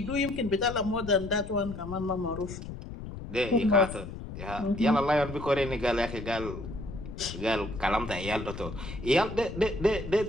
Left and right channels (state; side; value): noise; left; rumble, 10 dB below the sound